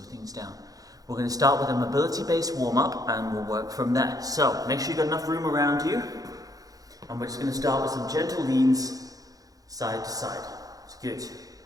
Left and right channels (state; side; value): late; left; 0.17 ms